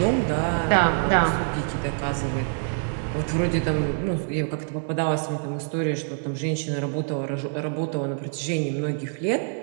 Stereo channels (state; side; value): silent; left; 61 dB below the other